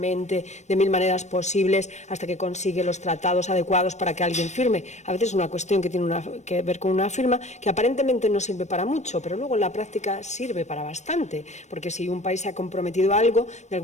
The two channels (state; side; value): late; right; 0.34 ms